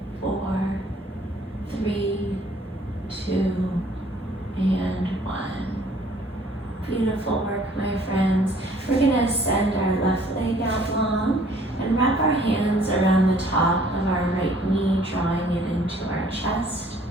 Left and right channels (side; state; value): both; normal; correlation 0.57